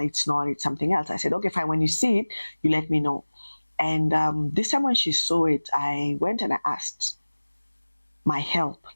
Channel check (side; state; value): both; inverted; correlation -1.00